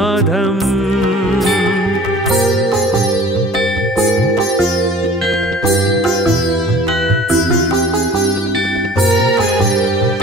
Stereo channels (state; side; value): normal; both; correlation 0.46